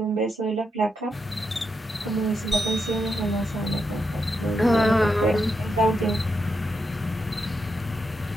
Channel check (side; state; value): both; normal; correlation 0.83